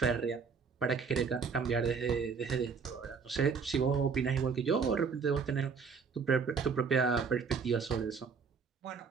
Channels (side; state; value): left; quieter; 5.6 dB